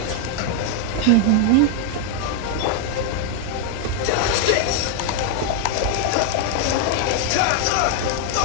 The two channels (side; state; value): both; different; correlation 0.00